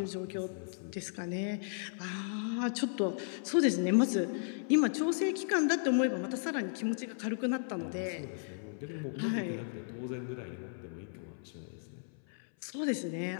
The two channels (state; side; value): silent; right; 54 dB below the other